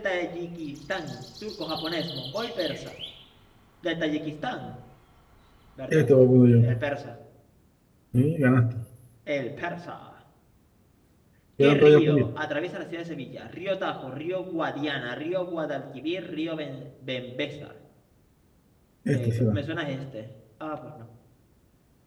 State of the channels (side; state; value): both; identical; correlation 1.00